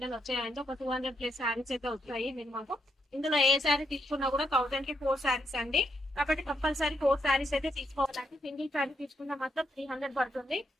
వచ్చాయండి. ఒక 200+ సారీస్ అయితే వచ్చాయి మాకు. ఇందులో ఏ శారీ తీసుకున్నా కూడా 1000 కి 4 సారీస్ అండి. కాబట్టి కంపల్సరీ 4 సారీస్ అయితే తీసుకోవాలండి. సింగిల్ శారీ తీసుకున్నా మాత్రం 300 పడుతుంది.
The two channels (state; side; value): normal; both; correlation 0.80